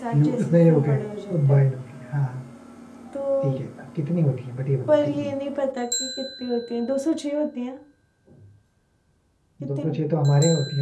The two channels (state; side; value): identical; both; correlation 1.00